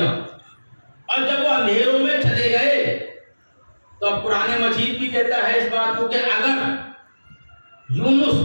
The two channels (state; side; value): inverted; both; correlation -1.00